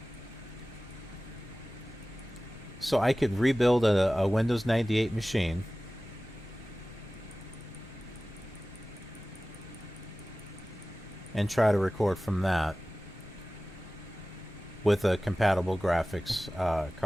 So I could rebuild a Windows 98 machine. And try to record from that with a compatible graphics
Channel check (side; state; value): both; normal; correlation 0.97